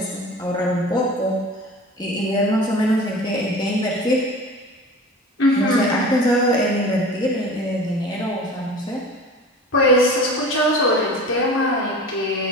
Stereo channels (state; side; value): normal; both; correlation 0.38